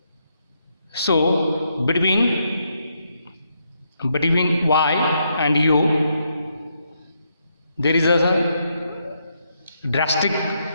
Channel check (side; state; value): both; inverted; correlation -0.78